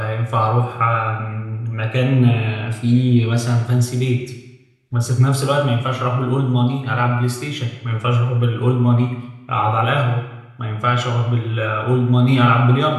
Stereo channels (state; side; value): identical; both; correlation 1.00